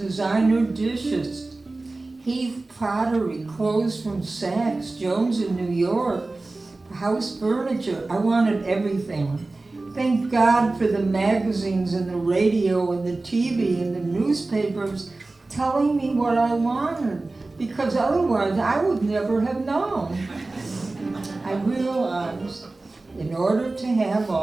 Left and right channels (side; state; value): left; quieter; 3.2 dB